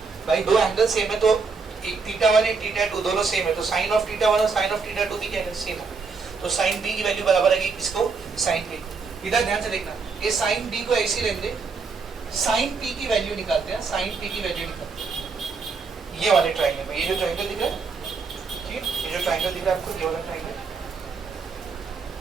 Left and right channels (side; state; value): left; quieter; 4.8 dB